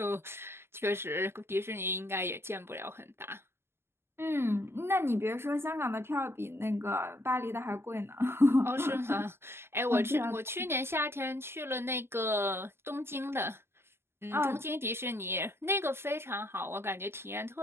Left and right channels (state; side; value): late; left; 0.12 ms